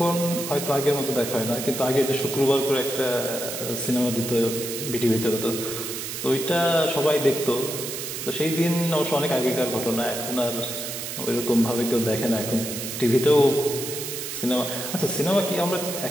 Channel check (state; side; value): noise; right; hiss, 6 dB below the sound